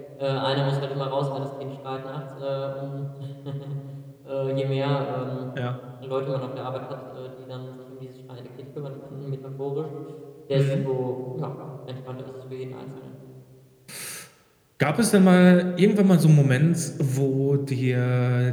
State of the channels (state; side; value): identical; both; correlation 1.00